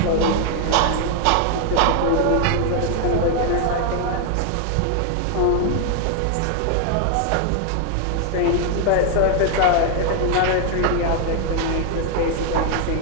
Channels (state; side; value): different; both; correlation 0.00